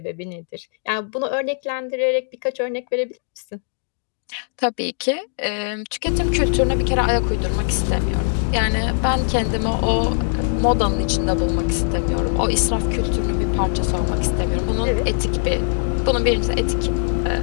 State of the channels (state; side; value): silent; right; digital silence